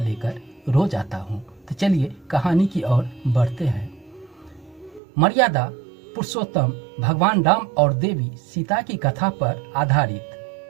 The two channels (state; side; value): drops out; left; at 5.0 s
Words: लेकर रोज आता हूं। तो चलिए कहानी की ओर बढ़ते हैं। मर्यादा पुरुषोत्तम भगवान राम और देवी सीता की कथा पर